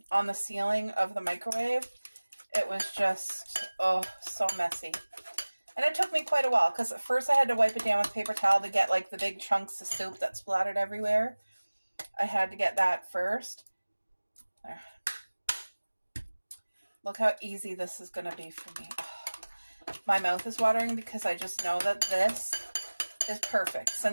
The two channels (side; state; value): both; inverted; correlation -1.00